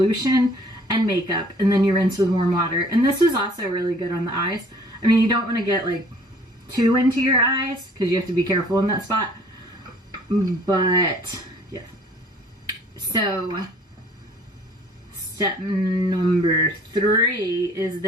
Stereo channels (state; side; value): normal; both; correlation 0.55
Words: and makeup. And then you rinse with warm water. And this is also really good on the eyes. I mean, you don't want to get like too into your eyes because you have to be careful in that spot. But yeah. So step number 3 is